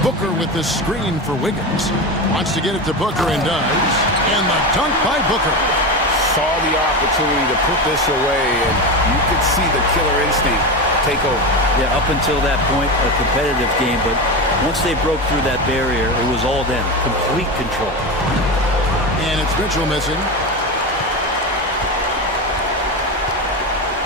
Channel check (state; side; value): normal; both; correlation 0.20